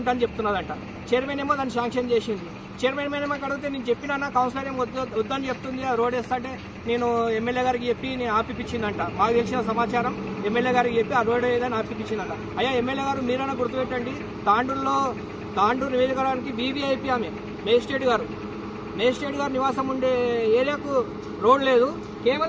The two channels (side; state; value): both; identical; correlation 1.00